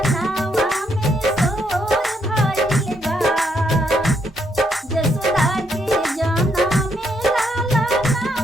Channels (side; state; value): both; normal; correlation 0.75